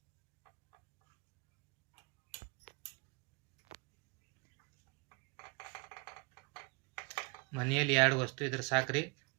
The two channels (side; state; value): left; quieter; 31.0 dB